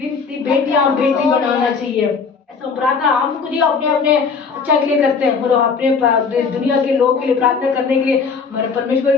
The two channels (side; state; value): right; quieter; 5.3 dB